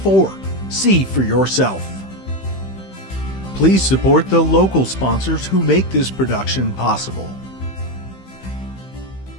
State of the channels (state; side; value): late; right; 15 ms